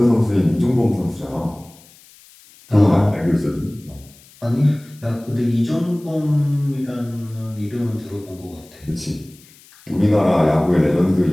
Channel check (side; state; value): left; noise; hiss, 26 dB below the sound